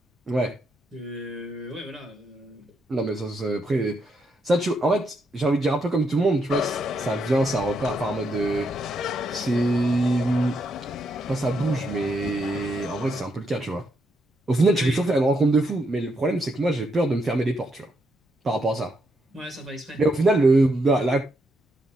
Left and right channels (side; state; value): both; normal; correlation 0.79